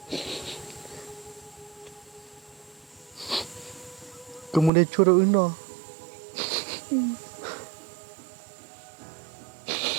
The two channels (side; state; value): left; drops out; at 4.7 s